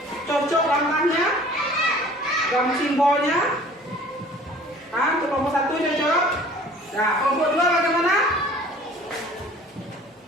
Cocok langkahnya? Gambar simbolnya? Untuk kelompok 1 cocok? Nah, kelompok 2 bagaimana?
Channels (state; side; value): normal; both; correlation 0.49